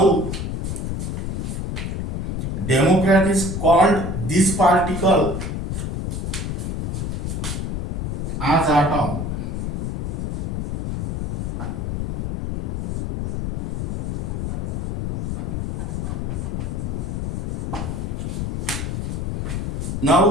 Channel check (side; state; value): left; noise; rumble, 2 dB below the sound